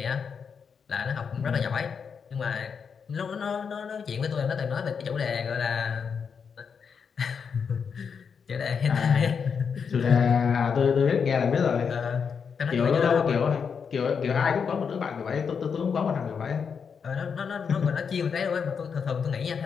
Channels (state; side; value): quieter; right; 6.3 dB